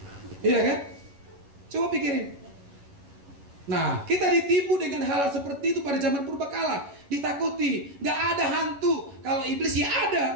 Iya kan? Coba pikirin. Nah, kita ditipu dengan hal seperti itu pada zaman purbakala. Ditakuti, gak ada hantu. Kalau iblis ya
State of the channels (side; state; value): left; late; 11 ms